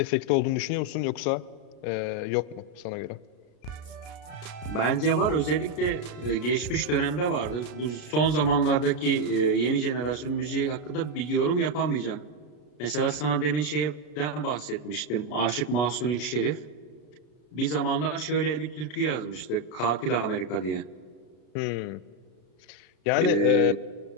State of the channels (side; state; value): right; late; 33 ms